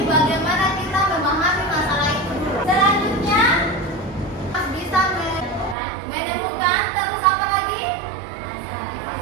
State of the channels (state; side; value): drops out; left; at 5.8 s